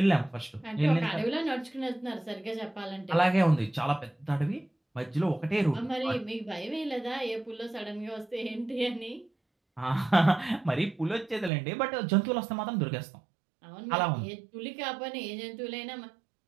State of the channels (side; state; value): left; drops out; at 11.5 s